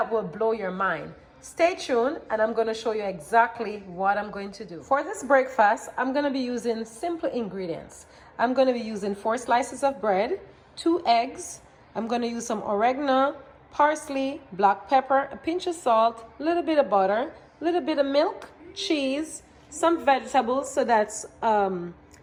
will blow your mind. Stay tuned, and I'm going to show you exactly what I'm going to do. For this breakfast, I'm going to be using simple ingredients. I'm going to be using 4 slices of bread, 2 eggs. I'm going to use some oregano, parsley, black pepper, a pinch of salt, a little bit of butter, a little bit of milk, cheese, some vegetables, so that's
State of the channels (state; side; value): identical; both; correlation 1.00